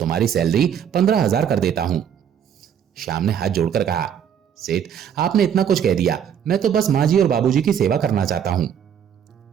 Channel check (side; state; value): left; quieter; 8.6 dB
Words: सैलरी 15,000 कर देता हूं। श्याम ने हाथ जोड़कर कहा, सेठ, आपने इतना कुछ कह दिया, मैं तो बस माँ जी और बाबूजी की सेवा करना चाहता हूं।